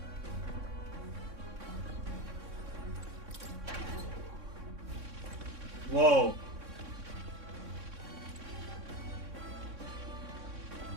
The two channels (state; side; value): late; left; 3.6 ms